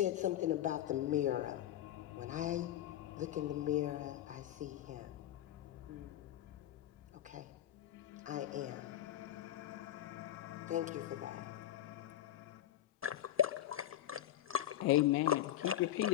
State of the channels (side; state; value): right; quieter; 12.5 dB